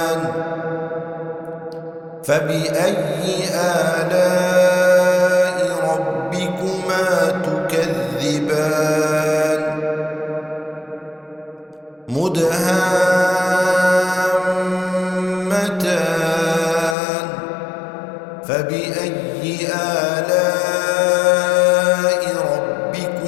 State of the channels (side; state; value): right; drops out; at 16.9 s